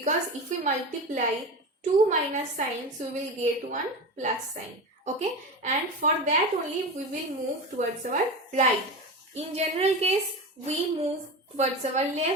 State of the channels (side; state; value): both; normal; correlation 0.25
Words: if we multiply two minus signs, we will get one plus sign. Okay, and for that only we will move towards our right. In general case we move towards our